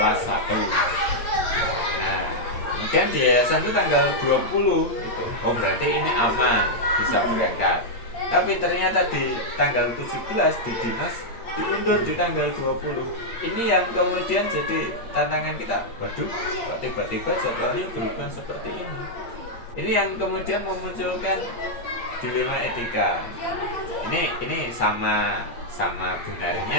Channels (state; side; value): late; right; 8.6 ms